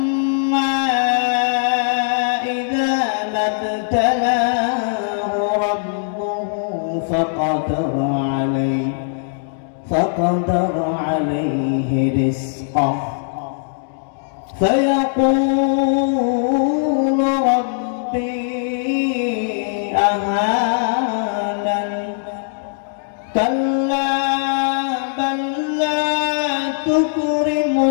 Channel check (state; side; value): silent; right; digital silence